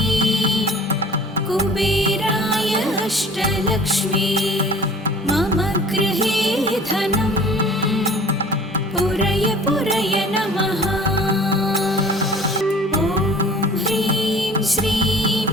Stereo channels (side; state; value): both; normal; correlation 0.47